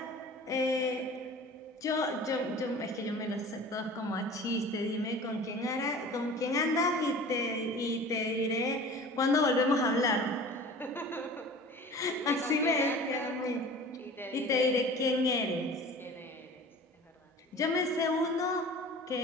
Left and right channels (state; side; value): normal; both; correlation 0.41